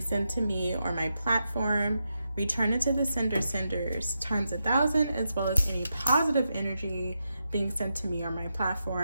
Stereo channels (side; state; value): both; inverted; correlation -0.86